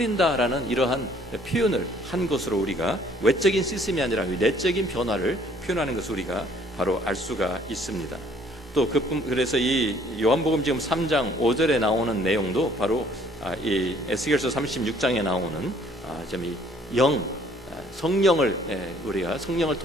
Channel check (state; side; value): normal; both; correlation 0.59